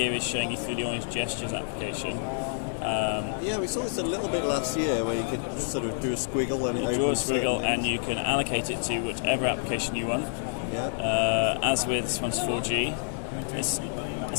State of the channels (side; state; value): right; silent; digital silence